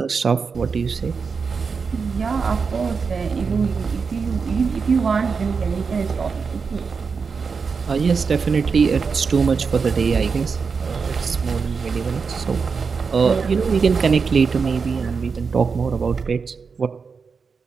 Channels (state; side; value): quieter; left; 5.3 dB